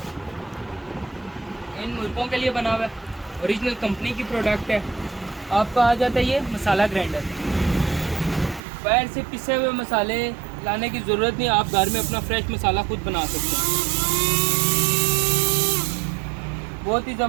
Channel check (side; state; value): left; drops out; at 8.6 s